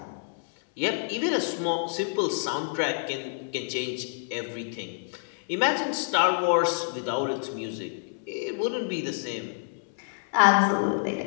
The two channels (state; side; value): silent; right; 59 dB below the other